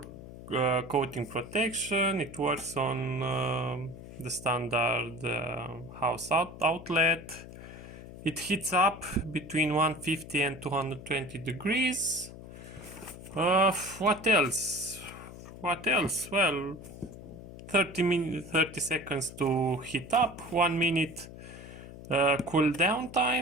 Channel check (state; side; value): noise; left; hum, 14 dB below the sound